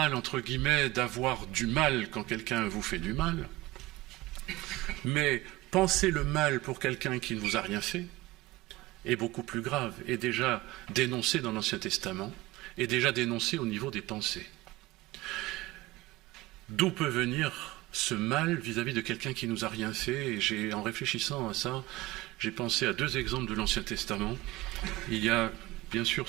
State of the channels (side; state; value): left; quieter; 19.0 dB